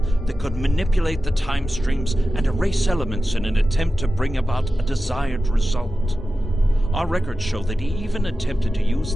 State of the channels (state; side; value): normal; both; correlation 0.94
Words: that could manipulate the time streams and erase elements in an attempt to bring about a desired result. Our records show that he even attempted to use